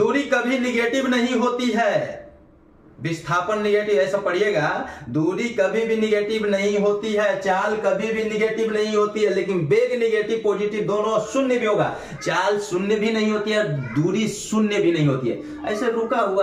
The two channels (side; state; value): both; identical; correlation 1.00